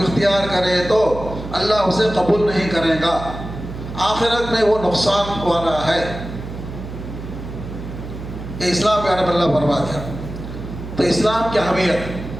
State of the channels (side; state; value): right; noise; hum, 10 dB below the sound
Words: اختیار کرے تو اللہ اسے قبول نہیں کرے گا، آخرت میں وہ نقصان والا ہے. یہ اسلام کے بارے میں اللہ فرما دیا. تو اسلام کی اہمیت